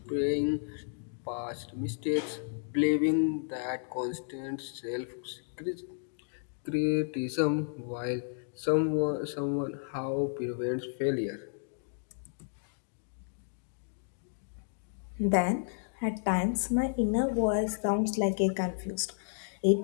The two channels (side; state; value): right; silent; digital silence